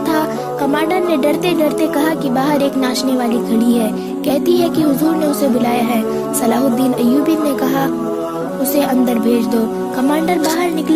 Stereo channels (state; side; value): identical; both; correlation 1.00